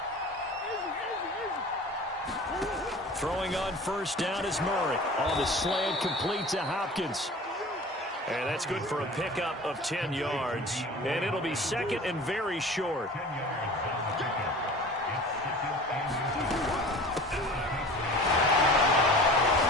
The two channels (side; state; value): both; normal; correlation 0.40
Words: Throwing on 1st down is Murray. On the slant, complete to Hopkins. And that's good for a pickup of 10 yards. And it'll be 2nd and very short.